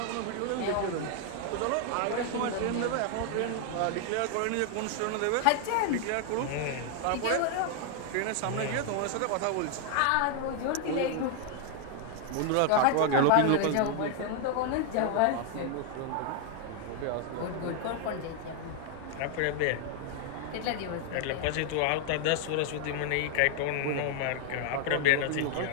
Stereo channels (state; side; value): different; both; correlation 0.00